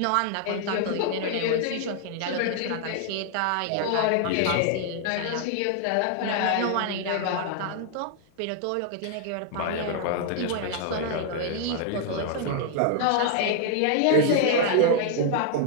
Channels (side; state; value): both; different; correlation 0.00